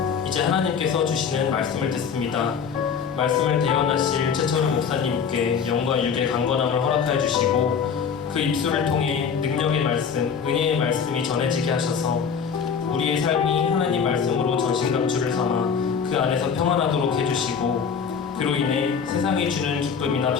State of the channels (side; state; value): right; quieter; 6.6 dB